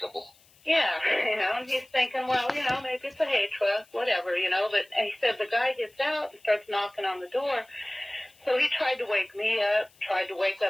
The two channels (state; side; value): noise; left; hiss, 30 dB below the sound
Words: Yeah, and he's thinking, well, maybe it's a hay truck, whatever, but and he said the guy gets out and starts knocking on the door. So he tried to wake me up, tried to wake